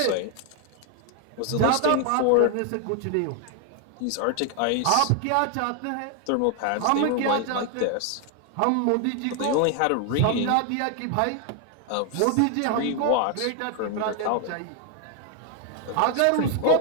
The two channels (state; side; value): different; both; correlation 0.00